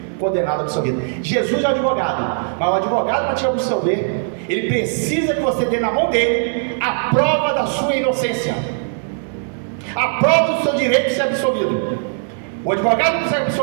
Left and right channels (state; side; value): silent; left; 66 dB below the other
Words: Condenado, absolvido. Jesus é o advogado, mas o advogado, para te absolver, ele precisa que você dê na mão dele a prova da sua inocência, a prova do seu direito de ser absolvido. O advogado não consegue